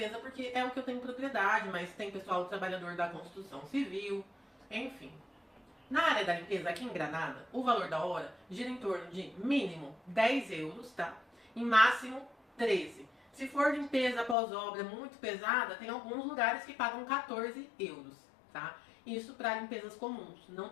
porque é o que eu tenho propriedade, mas tem pessoal trabalhador da construção civil, enfim. Na área da limpeza, aqui em Granada, o valor da hora gira em torno de mínimo 10 euros, tá? E máximo 13. Se for limpeza após obra muito pesada, tem alguns lugares que pagam 14 euros, tá? Isso para limpezas comuns. Não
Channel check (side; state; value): right; drops out; at 14.4 s